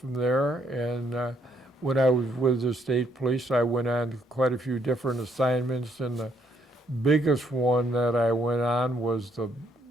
there. And when I was with the state police, I went on quite a few different assignments. And the biggest one that I went on was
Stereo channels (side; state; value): both; normal; correlation 0.71